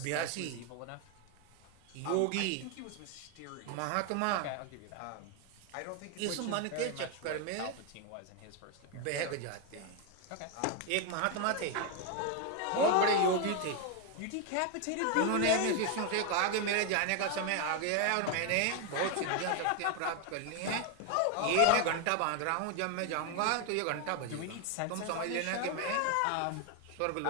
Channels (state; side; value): different; both; correlation 0.01